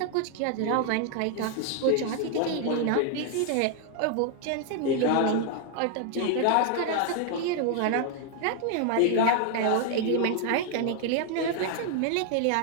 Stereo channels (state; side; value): different; both; correlation 0.00